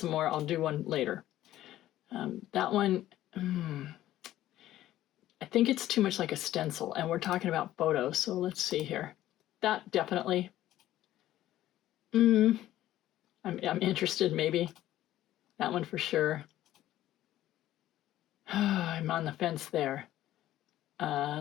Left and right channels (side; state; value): right; quieter; 13.8 dB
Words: more. I'll do one later. That one, I think it's too much like a stencil, and we're talking about photos, so let's see here. That definitely, I'm interested maybe. That one for sure. I'm on the fence there.